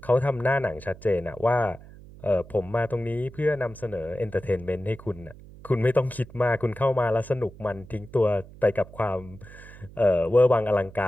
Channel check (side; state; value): right; noise; hum, 19 dB below the sound